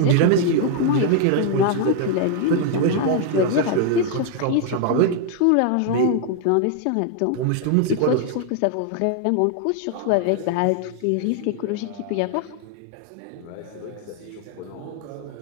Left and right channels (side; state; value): both; different; correlation 0.00